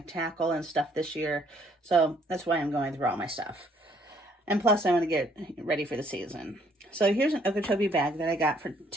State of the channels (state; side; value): normal; both; correlation 0.65